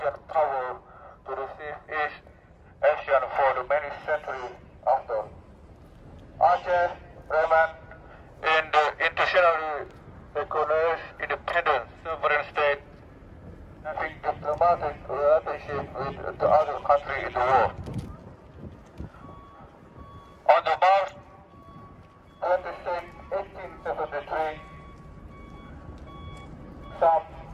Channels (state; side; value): identical; both; correlation 1.00